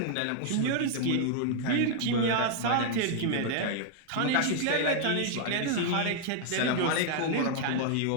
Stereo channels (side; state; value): both; different; correlation 0.00